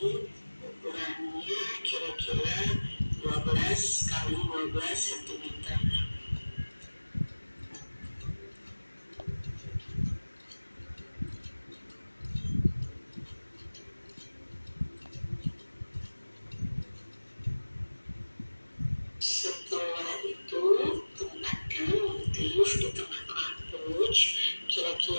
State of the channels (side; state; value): both; inverted; correlation -1.00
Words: ukurannya kira-kira 12 kali 12 cm. Setelah itu tempatkan motif di tengah-tengah pouch